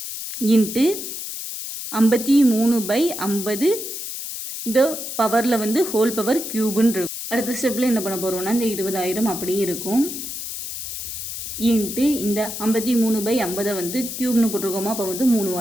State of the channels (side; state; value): left; noise; hiss, 7 dB below the sound